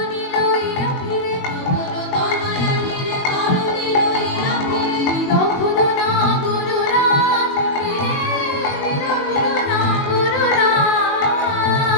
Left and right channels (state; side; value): late; right; 21 ms